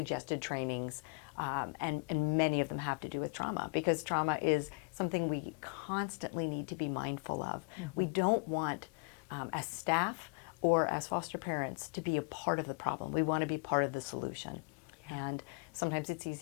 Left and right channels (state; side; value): quieter; right; 34.5 dB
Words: trainings, and many of them have to do with trauma, because trauma is something we constantly need to be mindful of. We don't want, as staff or as foster parents, to be a part of the problem. We want to be part of the solution. And sometimes it's